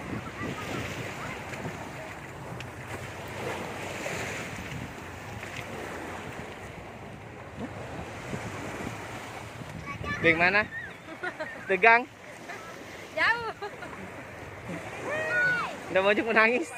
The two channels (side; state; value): both; identical; correlation 1.00